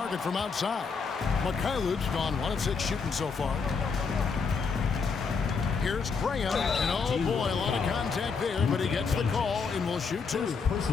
from outside. Mikhailu's gone 1 of 6 shooting so far. Here's Graham, and oh boy, a lot of contact there, but he gets the call and will shoot 2.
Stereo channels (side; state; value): right; quieter; 5.2 dB